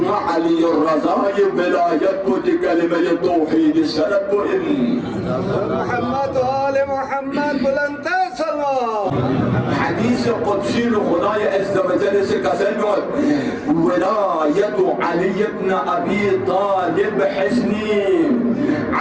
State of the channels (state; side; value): identical; both; correlation 1.00